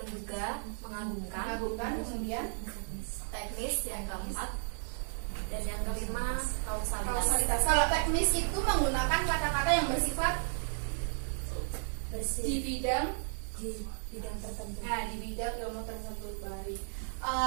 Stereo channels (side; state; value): left; silent; digital silence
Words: mengagumkan, mengagumkan, kemudian teknis yang keempat, dan yang kelima kausalitas. kausalitas. Kalau teknis itu menggunakan kata-kata yang bersifat di bersih bidang di bidang tertentu. di bidang ilmu tersebut. Baik.